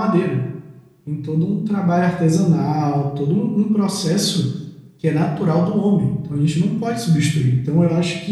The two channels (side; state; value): both; identical; correlation 1.00